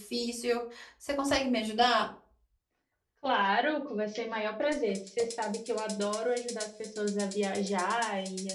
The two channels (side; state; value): both; identical; correlation 1.00